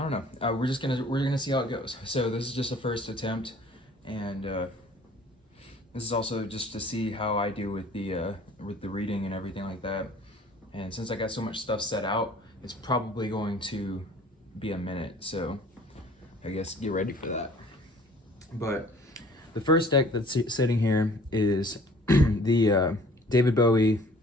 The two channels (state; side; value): normal; both; correlation 0.52